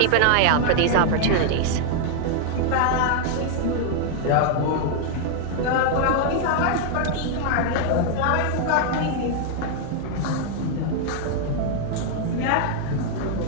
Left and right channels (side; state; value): both; different; correlation 0.00